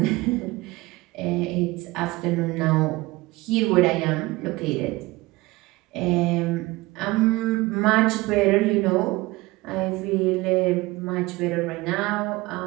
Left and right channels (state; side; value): quieter; left; 21.1 dB